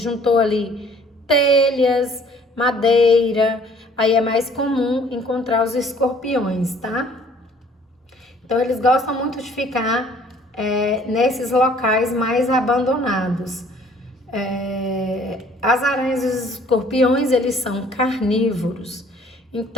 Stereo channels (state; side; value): normal; both; correlation 0.57